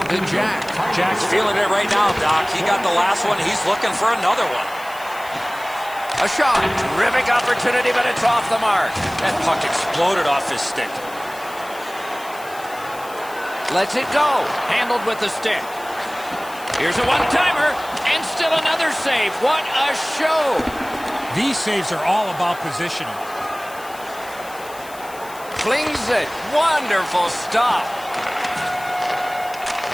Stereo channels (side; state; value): left; noise; hiss, 18 dB below the sound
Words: The Jack. Jack's feeling it right now, Doc. He got the last one. He's looking for another one. A shot. Terrific opportunity, but it's off the mark. That puck exploded off his stick. Lets it go. Handled with the stick. Here's a one-timer, and still another save. What a show. These saves are all about positioning. Flings it. Wonderful stop.